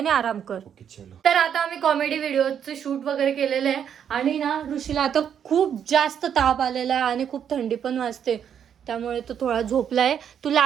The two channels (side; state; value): left; quieter; 8.5 dB